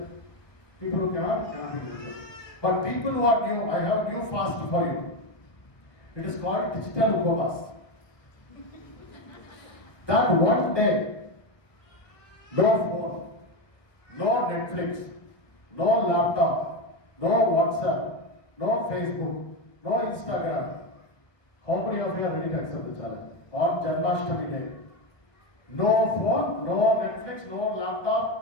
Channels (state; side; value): late; right; 1.0 ms